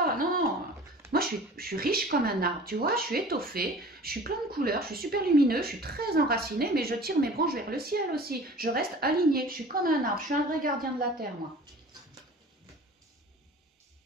Non. Moi, je suis riche comme un arbre, tu vois, je suis étoffée, je suis plein de couleurs, je suis super lumineux, je suis très enracinée, mais je tire mes branches vers le ciel aussi. Je reste alignée, je suis comme un arbre, je suis un vrai gardien de la terre, moi.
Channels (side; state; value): both; normal; correlation 0.43